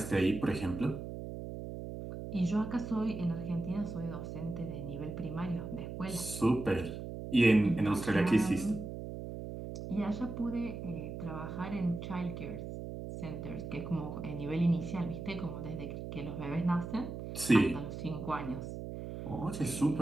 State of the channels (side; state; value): right; noise; hum, 7 dB below the sound